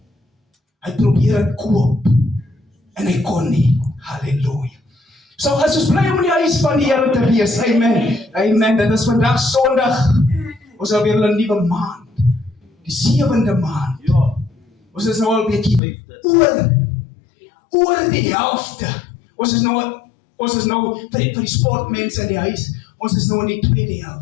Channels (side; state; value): right; drops out; at 15.8 s